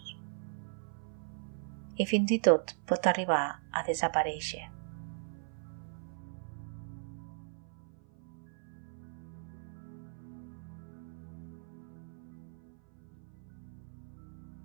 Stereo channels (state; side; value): silent; left; 52 dB below the other